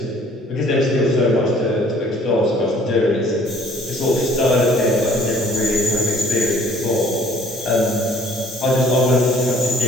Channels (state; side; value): normal; both; correlation 0.56